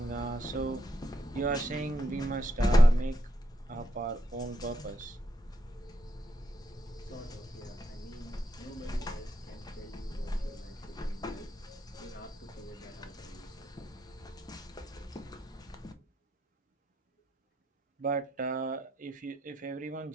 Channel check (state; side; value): normal; both; correlation 0.80